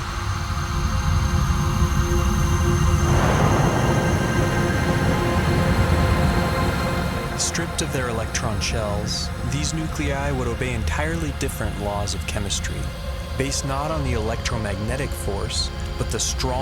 Stripped of their electron shells, these nuclei would obey entirely different laws of chemistry, based not on the electromagnetic force, but the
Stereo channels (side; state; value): both; identical; correlation 1.00